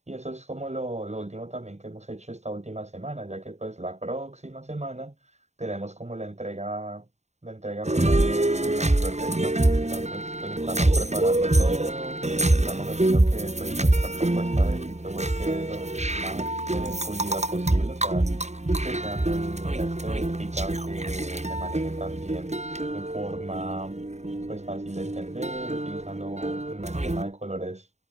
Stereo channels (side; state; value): left; late; 0.33 ms